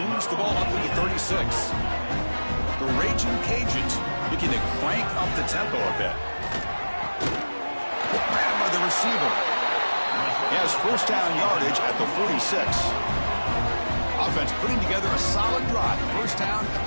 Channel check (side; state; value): both; inverted; correlation -1.00